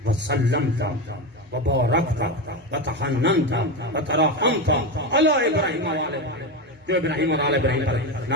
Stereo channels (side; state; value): both; normal; correlation 0.16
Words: وسلمت وبارکت وتحننت وترحمت علی ابراہیم و آل ابراہیم، جو ابراہیم اور آل ابراہیم پر